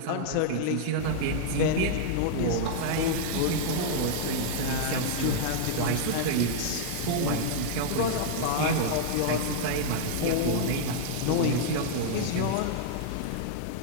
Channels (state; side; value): different; both; correlation -0.01